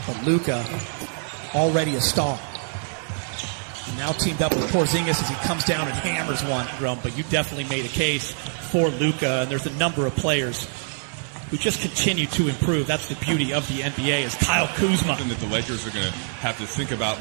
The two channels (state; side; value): silent; left; digital silence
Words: But Luka, already a star. Now teamed up with Porzingis as he comes down and hammers one, Rum. But you definitely made a case for Luka, and there's a number of players who just continue to improve. That's the beauty of the NBA is Kyle Kuzma. Something that the Lakers are going to have to think about